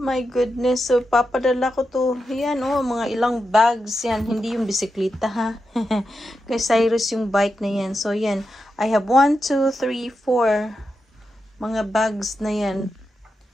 goodness. So, papadala ko to. Yan, oh, mga ilang bags yan. Hindi yung bisikleta, ha? Kay Cyrus yung bike na yan. So, yan. I have 1, 2, 3, 4 mga bags na yan.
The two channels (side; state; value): both; normal; correlation 0.88